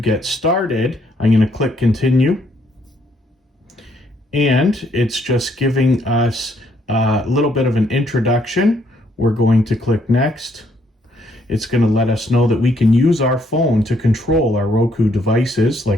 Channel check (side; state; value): both; normal; correlation 0.70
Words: started. I'm going to click Continue. And it's just giving us a little bit of an introduction. We're going to click Next. It's going to let us know that we can use our phone to control our Roku devices,